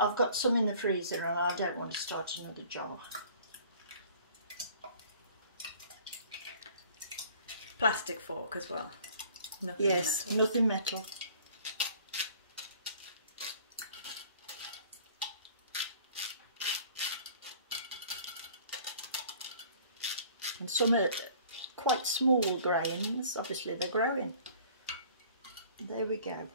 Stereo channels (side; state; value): both; inverted; correlation -0.51